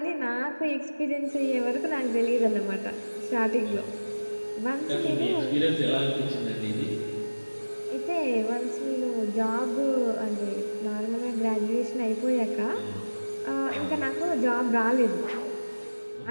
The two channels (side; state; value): both; inverted; correlation -1.00